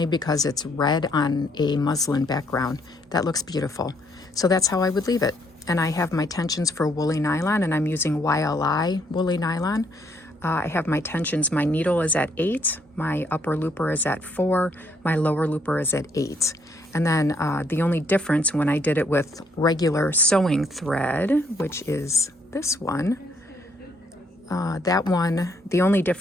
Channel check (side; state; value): both; normal; correlation 0.69